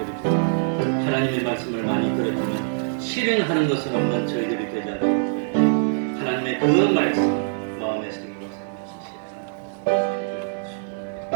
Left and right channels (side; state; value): left; silent; digital silence